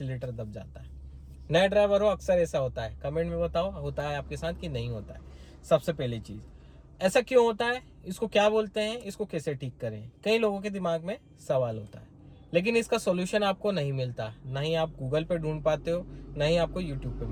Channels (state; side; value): identical; both; correlation 1.00